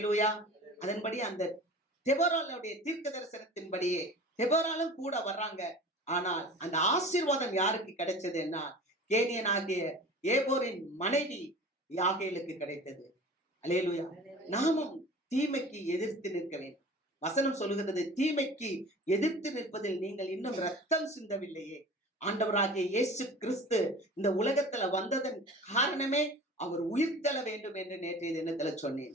அதன்படி அந்த தெபோராளுடைய தீர்க்க தரிசனத்தின்படியே தெபோராளும் கூட வர்றாங்க. ஆனால் அந்த ஆசீர்வாதம் யாருக்கு கிடைச்சதுன்னா, கேனியனாகிய ஏபோரின் மனைவி யாகேலுக்கு கிடைத்தது. அல்லேலூயா. நாமும் தீமைக்கு எதிர்த்து நிற்க வேண்டும். வசனம் சொல்லுகிறது, தீமைக்கு எதிர்த்து நிற்பதில் நீங்கள் இன்னும் ரத்தம் சிந்தவில்லையே. ஆண்டவராகிய இயேசு கிறிஸ்து இந்த உலகத்துல வந்ததன் காரணமே அவர் உயிர்த்தெழ வேண்டும் என்று நேற்றைய தினத்துல சொன்னேன்.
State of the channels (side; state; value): both; normal; correlation 0.40